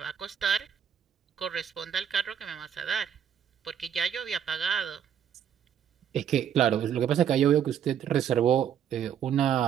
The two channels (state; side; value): quieter; left; 8.8 dB